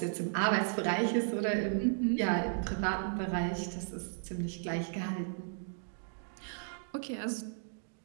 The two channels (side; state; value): left; silent; digital silence